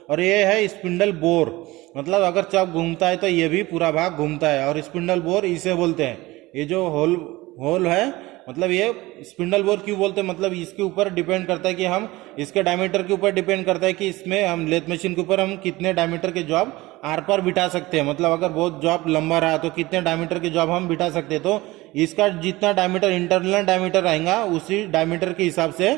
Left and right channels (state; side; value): quieter; left; 19.8 dB